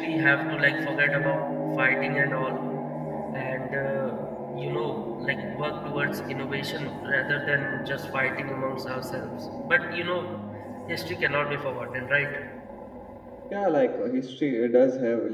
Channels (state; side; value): identical; both; correlation 1.00